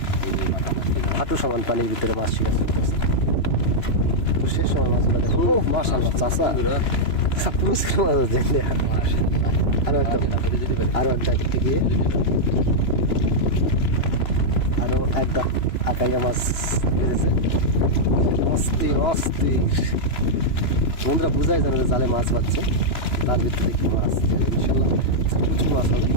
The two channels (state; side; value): late; right; 2.9 ms